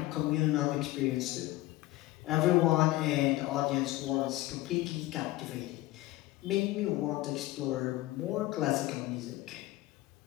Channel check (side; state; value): right; quieter; 17.6 dB